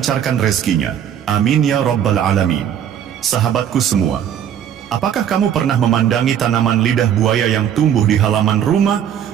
rezekinya. Amin ya Rabbal Alamin. Sahabatku semua, apakah kamu pernah memandangi tanaman lidah buaya yang tumbuh di halaman rumah,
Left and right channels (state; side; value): quieter; left; 9.4 dB